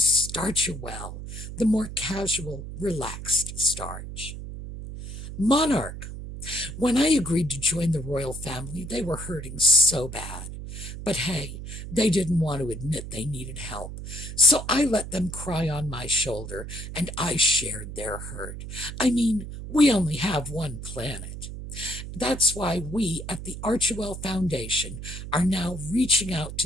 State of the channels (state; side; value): noise; right; hum, 9 dB below the sound